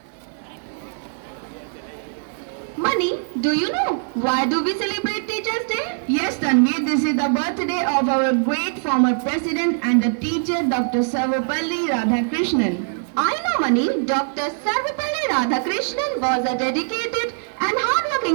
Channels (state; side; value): silent; left; 64 dB below the other